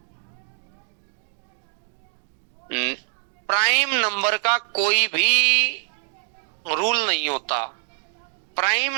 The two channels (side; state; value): left; silent; 59 dB below the other